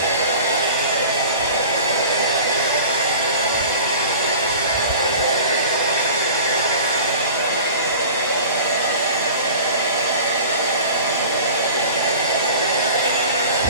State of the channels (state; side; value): inverted; both; correlation -0.41